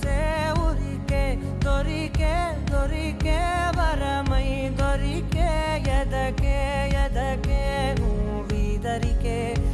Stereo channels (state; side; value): identical; both; correlation 1.00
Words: ఉరికే దొరికే దొరికే వరమై దొరికే ఎదకే ఎదకే నువ్విదరికే